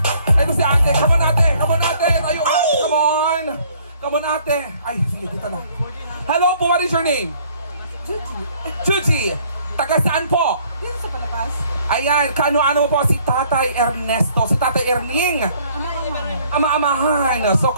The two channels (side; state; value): both; inverted; correlation -0.60